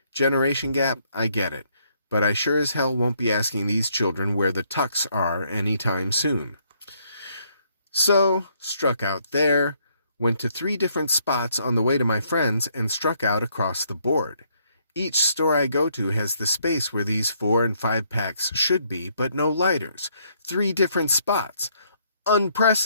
generation gap, I get it, but I sure as hell won't be asking these children where the tucks are anytime soon. So, struck out there, went to 3 different spots on the way to my friend's and struck out across the board. Each store I go to has the space where these 4- and 5-packs should be, but no lighters. 3 different spots.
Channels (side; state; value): both; inverted; correlation -0.70